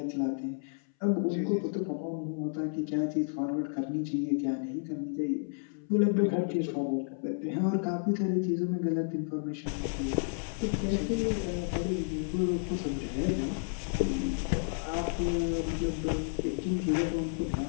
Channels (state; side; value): silent; right; 57 dB below the other